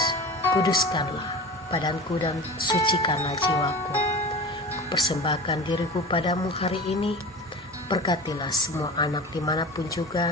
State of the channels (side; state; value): both; normal; correlation 0.34